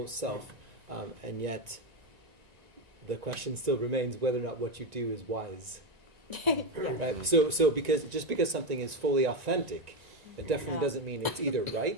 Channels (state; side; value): late; left; 1.9 ms